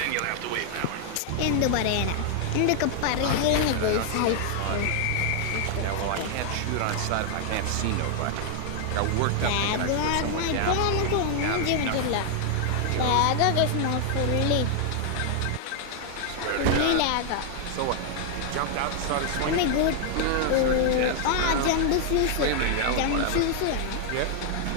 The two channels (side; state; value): both; different; correlation 0.00